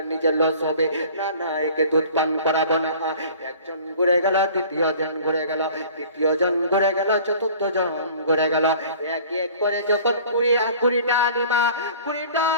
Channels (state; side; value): inverted; both; correlation -0.47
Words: নিজের লস হবে না না একে দুধ পান করাবো না একজন ঘুরে গেল দ্বিতীয় জন ঘুরে গেল তৃতীয় জন ঘুরে গেল চতুর্থ জন ঘুরে গেল এক এক করে যখন কুড়িটা আলিমা 20টা